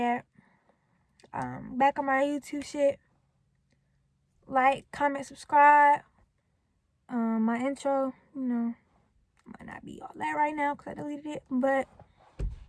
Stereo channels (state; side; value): identical; both; correlation 1.00